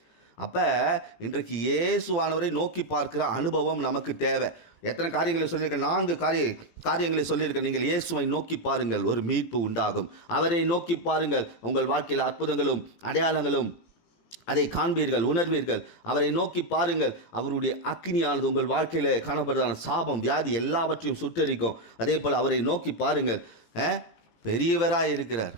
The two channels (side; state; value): right; late; 18 ms